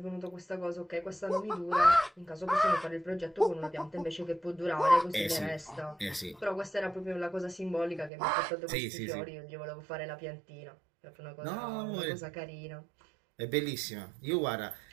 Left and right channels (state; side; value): drops out; left; at 8.1 s